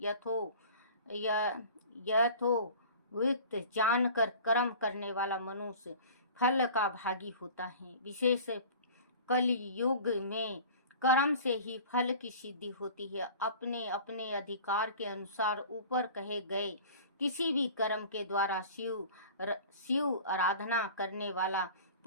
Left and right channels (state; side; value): inverted; both; correlation -0.42